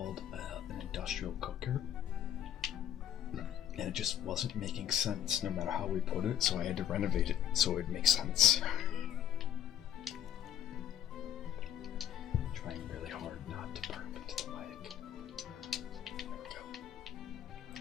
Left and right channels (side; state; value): right; quieter; 10.7 dB